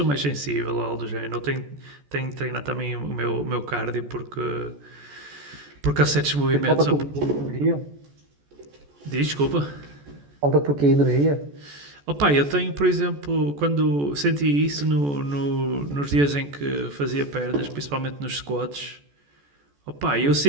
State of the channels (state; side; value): late; left; 14 ms